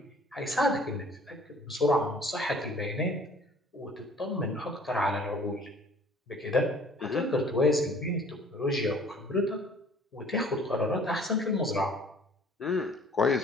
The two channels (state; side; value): normal; both; correlation 0.53